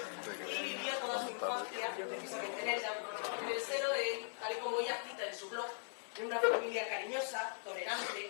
y vivió toda su infancia precisamente en Elda, en el seno de, tal y como ella cita en su blog, de una familia cariñosa, tolerante,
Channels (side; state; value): right; silent; 51 dB below the other